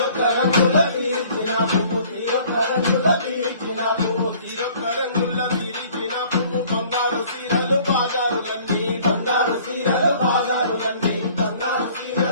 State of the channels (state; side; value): inverted; both; correlation -0.54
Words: రంగుల తీర్చిన పువ్వు తీరొక్క రంగుల తీర్చిన పువ్వు తీరొక్క రంగుల తీర్చిన పువ్వు బంగారు సీరలు బాజారులన్నీ బంగారు సీరలు బాజారులన్నీ బంగారు